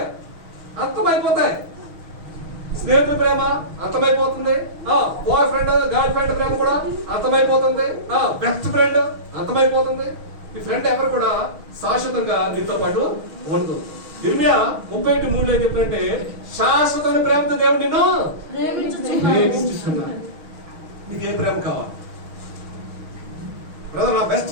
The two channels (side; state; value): left; late; 6.4 ms